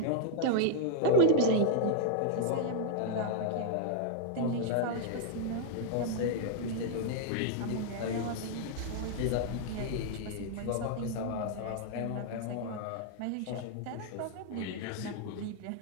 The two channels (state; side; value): different; both; correlation -0.01